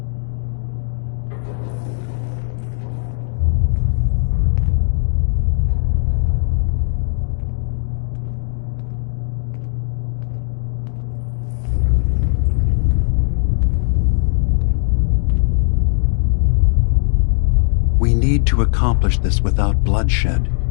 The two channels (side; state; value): right; silent; digital silence